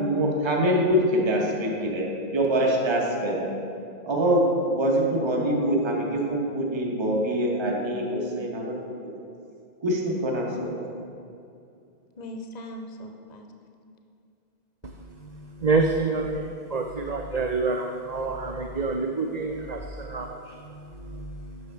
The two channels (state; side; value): late; right; 2.0 ms